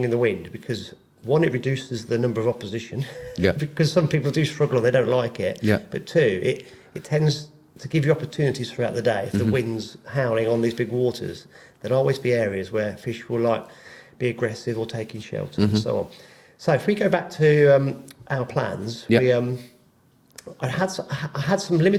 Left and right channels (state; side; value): identical; both; correlation 1.00